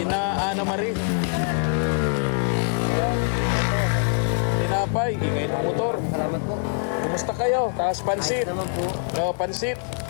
Ana Marie. Tinapay, ingay ng motor. Salamat po. Kumusta kayo? Taas pansit. Naman po. Oh, pansit.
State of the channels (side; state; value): right; silent; digital silence